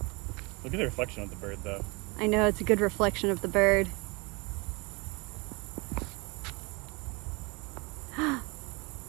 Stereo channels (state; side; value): quieter; left; 27.7 dB